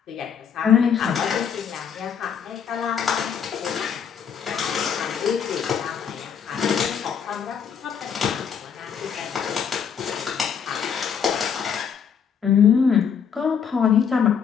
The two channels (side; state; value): right; quieter; 7.4 dB